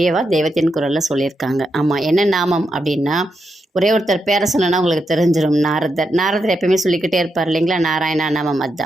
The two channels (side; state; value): both; normal; correlation 0.84